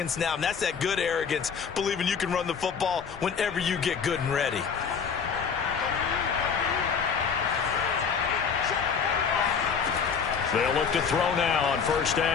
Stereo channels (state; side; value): quieter; right; 6.3 dB